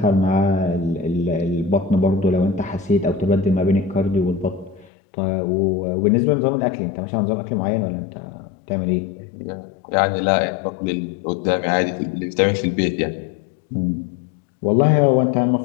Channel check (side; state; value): right; drops out; at 4.9 s